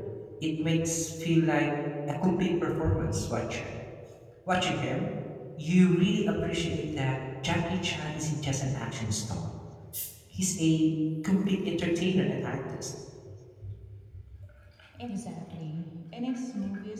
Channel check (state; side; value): identical; both; correlation 1.00